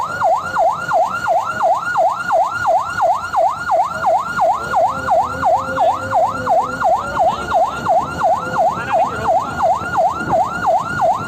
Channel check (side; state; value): both; identical; correlation 1.00